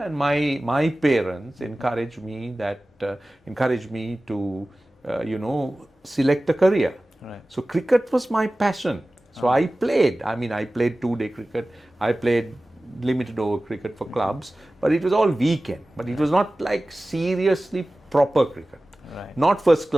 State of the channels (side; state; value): both; normal; correlation 0.97